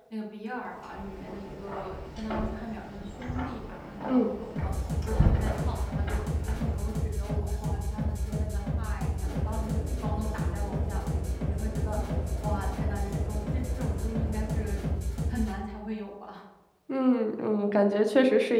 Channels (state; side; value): identical; both; correlation 1.00